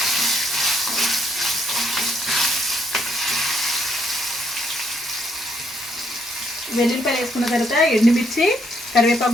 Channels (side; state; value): both; normal; correlation 0.72